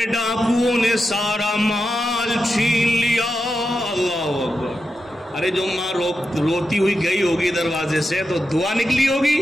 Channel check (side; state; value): both; normal; correlation 0.89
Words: ڈاکوؤں نے سارا مال چھین لیا. اللہ اکبر. ارے جو ماں روتی ہوئی گئی ہوگی دروازے سے تو دعا نکلی ہوگی,